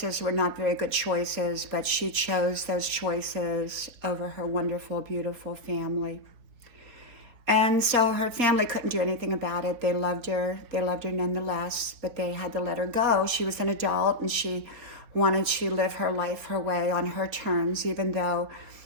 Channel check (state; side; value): late; left; 4.2 ms